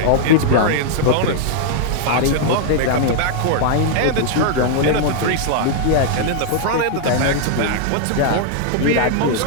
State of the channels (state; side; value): different; both; correlation 0.00